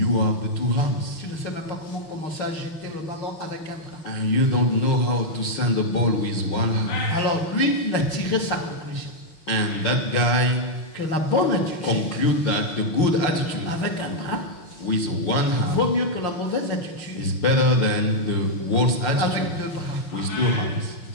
have the two hands. Tu ne sais même pas comment commencer à jeter le ballon avec un bras. And you don't know how to send the ball with one hand. Alors lui, il a tiré sa conclusion. And that guy Que la bonne attitude conclude that the good attitude avec un bras with one hand vaut mieux que la mauvaise attitude is better than the worst avec attitude deux bras. with two hands.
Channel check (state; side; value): late; right; 6.0 ms